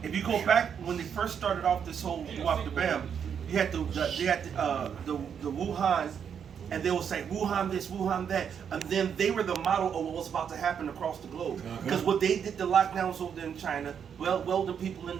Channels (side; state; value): left; quieter; 7.7 dB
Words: If you go back when they first started off this whole Wap the Bam, you had the Wuhan. And they will say Wuhan this, Wuhan that, and then they were the model of what was about to happen across the globe. Because what they did, the lockdowns over there in China, welding people in